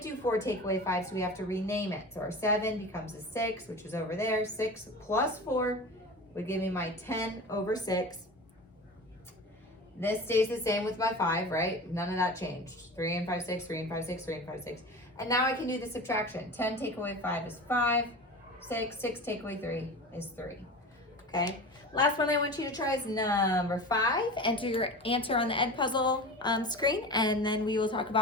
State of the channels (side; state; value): both; normal; correlation 0.33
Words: do 4 take away 5, so we have to rename it. So our 7 becomes a 6, which is over there. 6 plus 4 would give me my 10/6. This stays the same with my 5, right? None of that changed. 3 and 5, 6, 3 and 5, 6, 3 and 5, 6. And now I can do the subtraction. 10 take away 5 is 5. 6 take away 3 is 3. Okay? Last one I want you to try is number 5. Enter your answer on the Edpuzzle screen, and then we will talk